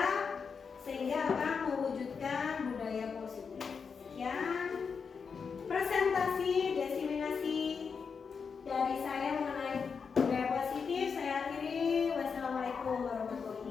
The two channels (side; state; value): right; quieter; 5.8 dB